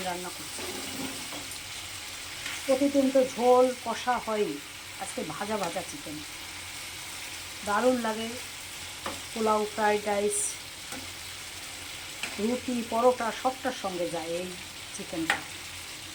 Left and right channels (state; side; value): identical; both; correlation 1.00